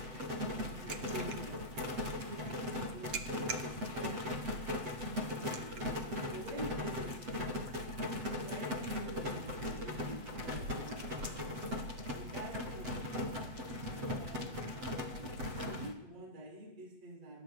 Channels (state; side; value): late; left; 8.0 ms